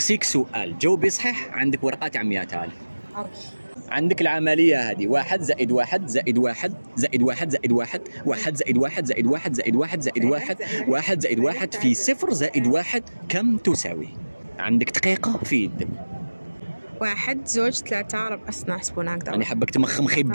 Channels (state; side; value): inverted; both; correlation -1.00